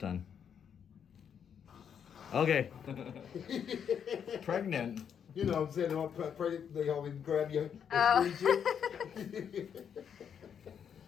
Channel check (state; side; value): quieter; right; 7.9 dB